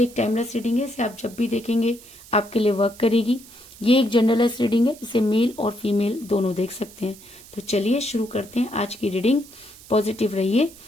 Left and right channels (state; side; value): noise; right; hiss, 20 dB below the sound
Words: एक टाइमलेस रीडिंग है, इसे आप जब भी देखेंगे आपके लिए वर्क करेगी। ये एक जनरलेस रीडिंग है, इसे मेल और फीमेल दोनों देख सकते हैं। तो चलिए शुरू करते हैं आज की रीडिंग। पॉजिटिव रहिए।